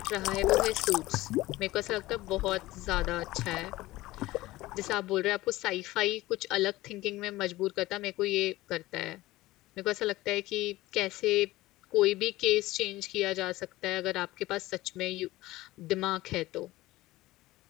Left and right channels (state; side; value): quieter; right; 18.1 dB